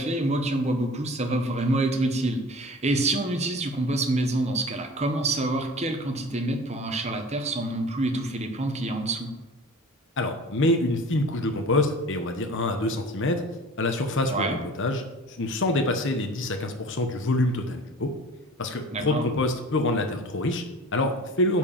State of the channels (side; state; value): both; normal; correlation 0.41